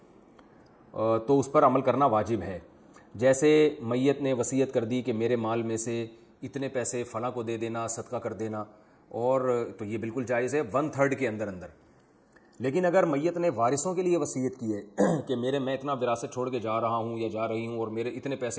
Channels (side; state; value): both; identical; correlation 1.00